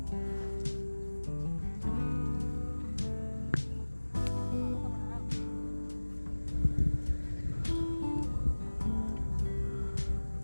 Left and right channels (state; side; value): inverted; both; correlation -1.00